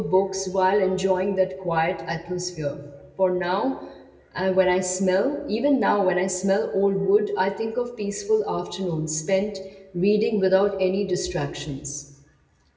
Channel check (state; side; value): identical; both; correlation 1.00